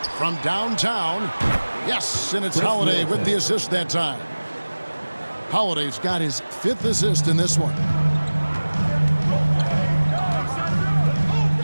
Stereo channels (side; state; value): both; inverted; correlation -1.00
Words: from downtown. Yes, and it's Holiday with the assist that time. Holiday's got his 5th assist in this one.